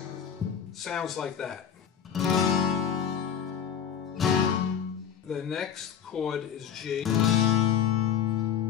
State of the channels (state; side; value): quieter; right; 8.4 dB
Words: Sounds like that. The next chord is G.